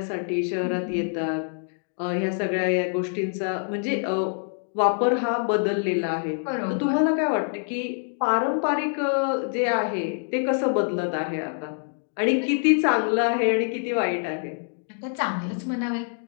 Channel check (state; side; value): silent; right; 59 dB below the other